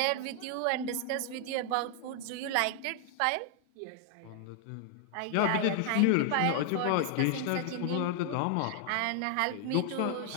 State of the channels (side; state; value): both; different; correlation 0.00